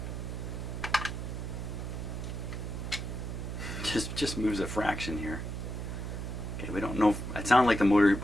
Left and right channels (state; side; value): noise; right; hum, 4 dB below the sound